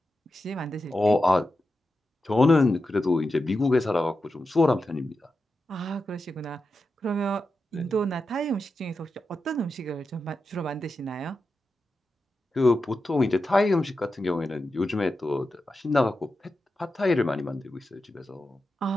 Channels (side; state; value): both; normal; correlation 0.90